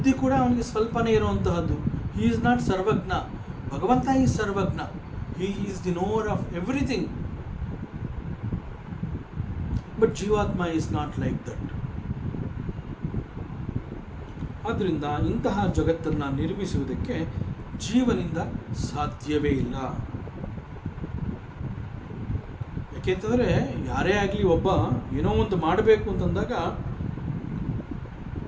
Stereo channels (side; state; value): both; identical; correlation 1.00